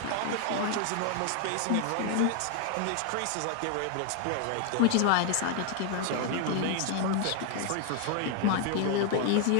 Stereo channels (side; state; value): both; different; correlation 0.00